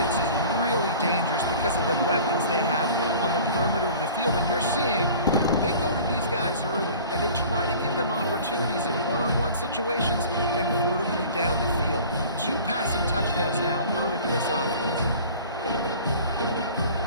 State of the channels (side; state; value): both; inverted; correlation -0.44